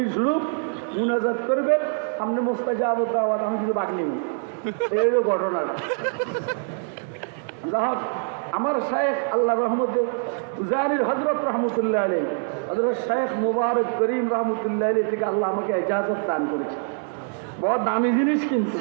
শুরু, মুনাজাত করবেন, সামনে মুস্তাজাব দাওয়াত, আমি কিছু বাদ নিই। এই ঘটনা যাহোক আমার শায়েখ আল্লাহ রহমতে জারির হযরত রহমতুল্লাহ আলাইহি, হযরত শায়েখ মুবারক করিম রহমতুল্লাহ আলাইহি থেকে আল্লাহ আমাকে ইজাজত দান করেছে। বড় দামি জিনিস, কিন্তু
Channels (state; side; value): silent; left; 56 dB below the other